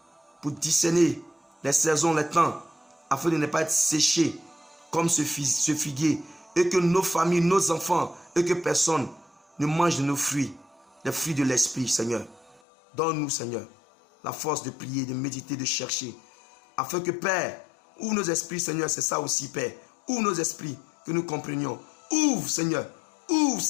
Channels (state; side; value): drops out; right; at 12.6 s